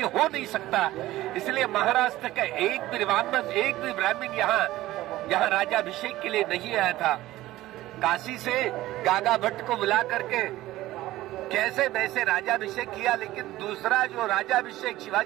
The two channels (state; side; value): quieter; left; 16.2 dB